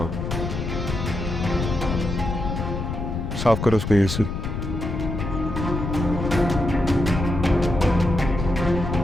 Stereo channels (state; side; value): noise; left; rumble, 4 dB below the sound